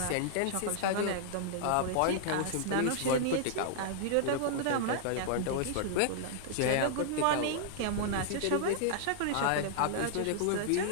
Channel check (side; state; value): both; different; correlation -0.01